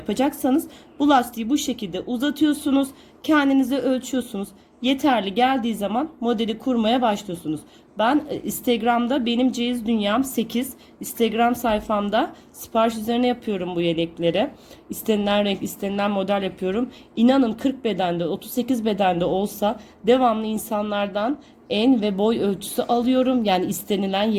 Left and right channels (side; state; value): both; identical; correlation 1.00